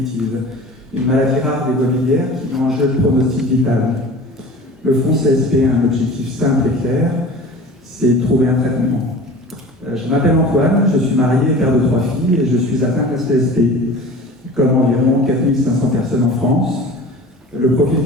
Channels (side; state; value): both; normal; correlation 0.40